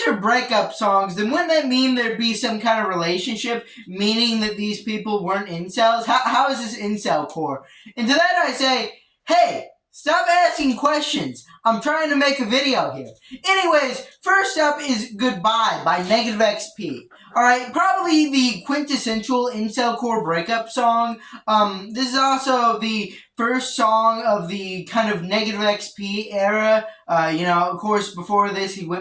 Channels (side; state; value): both; identical; correlation 1.00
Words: are breakup songs, then wouldn't that mean there'd be some kind of relationship, meaning that these people weren't incels? How is this Incelcore? And to that I say, hey, stop asking questions. I'm trying to make a video here. Anyways, first up is Goodbye by Negative XP. Alright, probably the quintessential Incelcore breakup song. This is also the first song of the kind of Negative XP era. Of course, before this, he